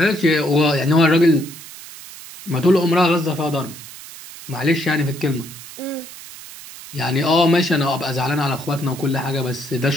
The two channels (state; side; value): noise; right; hiss, 15 dB below the sound